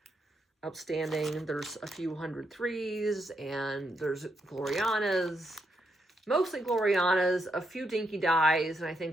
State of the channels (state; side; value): normal; both; correlation 0.80